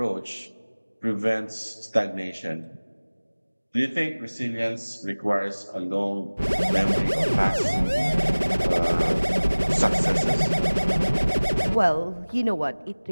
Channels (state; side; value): inverted; both; correlation -1.00